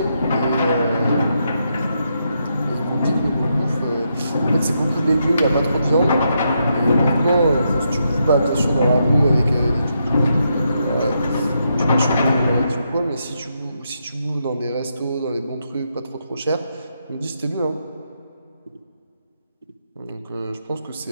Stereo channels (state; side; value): inverted; both; correlation -0.81